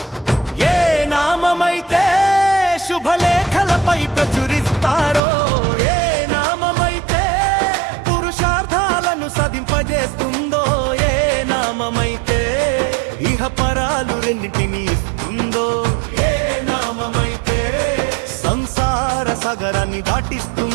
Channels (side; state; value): left; drops out; at 5.2 s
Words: ఏ నామమైతే శుభలేఖలపై ప్రచురిస్తారో, ఏ నామమైతే పురుషార్థాలను సాధింపజేస్తుందో, ఏ నామమైతే ఇహపరాలు రెండింటిని ఇస్తుందో, ఏ నామమైతే సంసార సాగరాన్ని